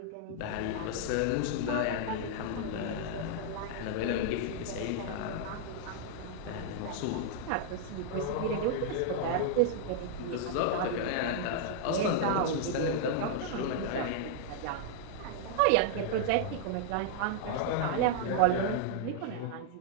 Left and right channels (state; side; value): different; both; correlation -0.01